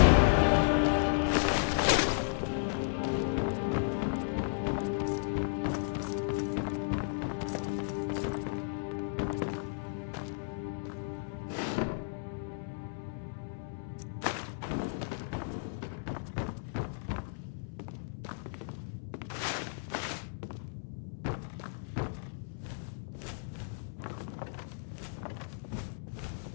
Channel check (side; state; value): right; silent; 55 dB below the other